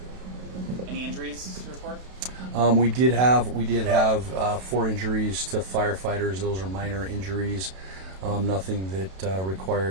Any injuries to report? We did have 4 injuries to firefighters. Those are minor injuries. Nothing that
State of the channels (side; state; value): left; late; 32 ms